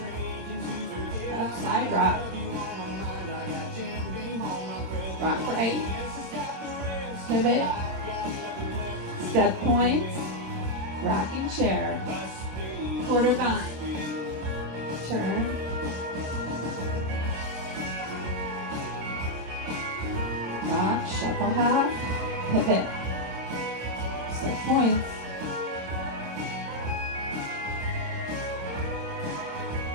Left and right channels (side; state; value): left; late; 26 ms